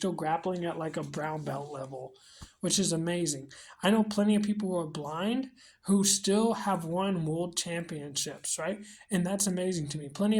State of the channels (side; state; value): both; identical; correlation 1.00